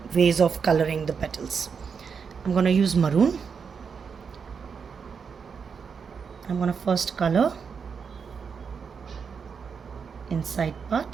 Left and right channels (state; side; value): quieter; left; 6.1 dB